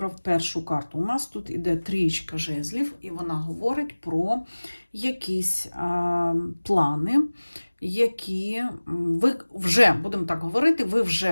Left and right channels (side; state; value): both; inverted; correlation -1.00